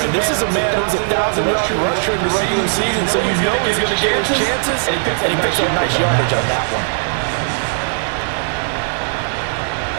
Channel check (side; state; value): left; silent; digital silence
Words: this is a man who's a 1,000-yard rusher in the regular season, so you know he's going to get his chances, and he picks up nice yardage on that one.